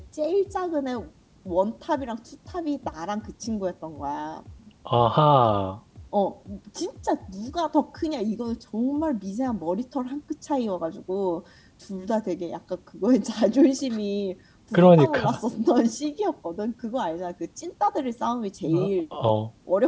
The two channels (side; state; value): both; identical; correlation 1.00